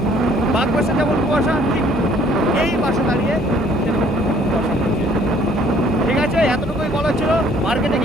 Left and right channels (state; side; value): normal; both; correlation 0.59